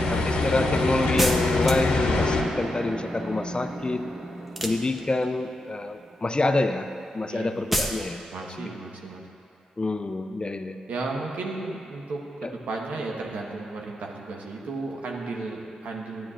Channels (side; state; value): both; normal; correlation 0.86